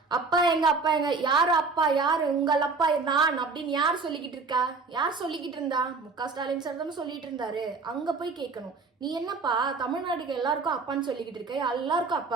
அப்பா எங்க யாரு அப்பா, யாரு உங்கள் அப்பா, நான் அப்படின்னு யார் சொல்லிக்கிட்டு இருக்கா? யார் சொல்லிக்கிட்டு இருந்தா? முக ஸ்டாலின் சார் தானே சொல்லிட்டு இருந்தாரு. அங்க போய் கேட்கணும், நீ என்னப்பா தமிழ்நாட்டுக்கு எல்லாருக்கும் அப்பான்னு சொல்லிக்கிட்டு இருக்க, எல்லாருக்கும்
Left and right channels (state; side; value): quieter; left; 4.3 dB